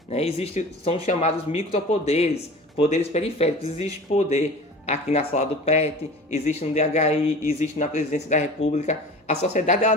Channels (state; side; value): normal; both; correlation 0.39